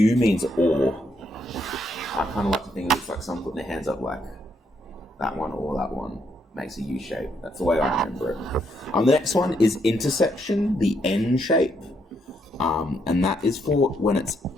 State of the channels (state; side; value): normal; both; correlation 0.75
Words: means or. I kind of like to think of it like someone putting their hands up like that one or that one. Makes a U shape. That's the way I remember it. The next one is intersection, the N shape. And that is for when it's